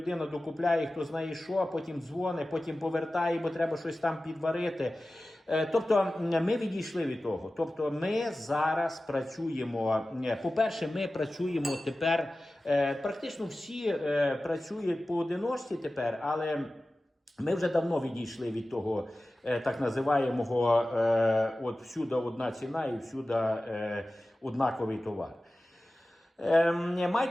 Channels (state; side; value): normal; both; correlation 0.96